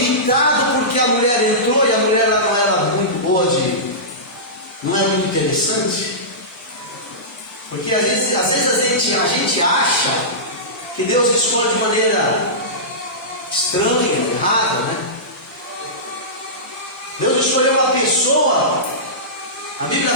porque a mulher entrou e a mulher não era muito boa, não era muito interessante. Porque às vezes a gente acha que Deus escolhe de maneira estranha, errada, né? Deus escolheu uma pessoa. A Bíblia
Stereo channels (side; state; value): both; normal; correlation -0.18